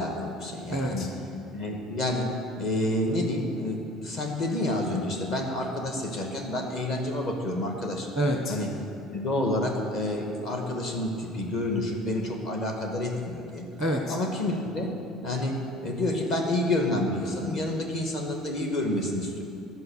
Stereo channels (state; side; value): normal; both; correlation 0.45